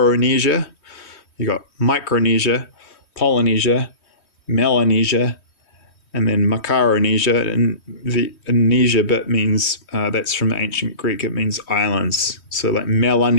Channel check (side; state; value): right; late; 3.2 ms